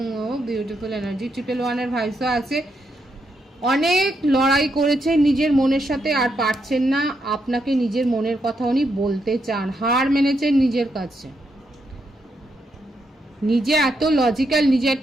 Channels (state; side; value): normal; both; correlation 0.80